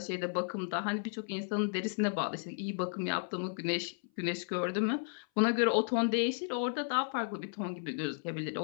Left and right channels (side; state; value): right; silent; 55 dB below the other